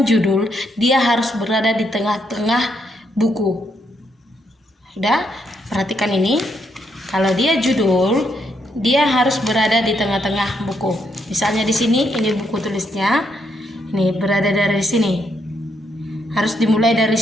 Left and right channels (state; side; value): normal; both; correlation 0.77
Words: judul, dia harus berada di tengah-tengah buku. Sudah? Perhatikan ini. Kalau dia judul, dia harus berada di tengah-tengah buku. Misalnya di sini, ini buku tulisnya. Ini berada dari sini. Harus dimulai dari